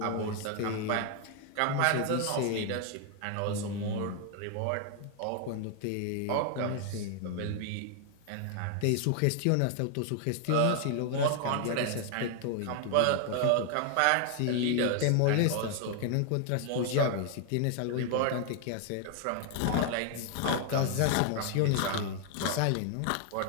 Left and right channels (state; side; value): different; both; correlation 0.00